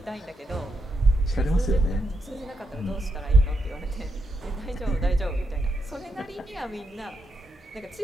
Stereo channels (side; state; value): both; normal; correlation 0.82